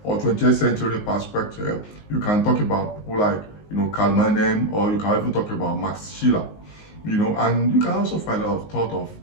or 20th century perspective, you can talk about people like, Karl Marx, or you can even talk about Max Schiller, and you can also find a lot of thought of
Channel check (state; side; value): late; right; 19 ms